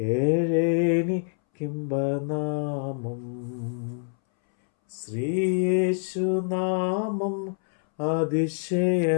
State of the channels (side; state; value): right; silent; 61 dB below the other